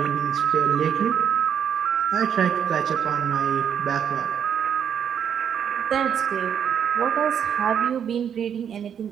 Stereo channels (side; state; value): left; quieter; 8.3 dB